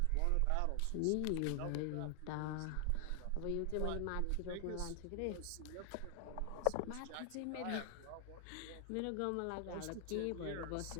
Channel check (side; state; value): both; different; correlation 0.00